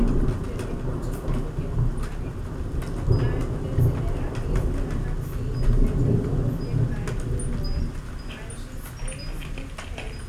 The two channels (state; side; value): identical; both; correlation 1.00